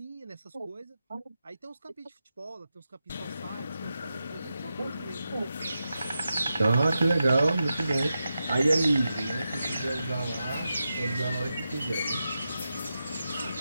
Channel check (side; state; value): both; inverted; correlation -0.89